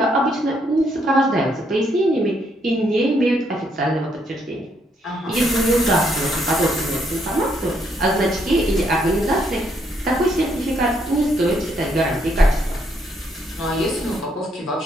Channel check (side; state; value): both; normal; correlation 0.73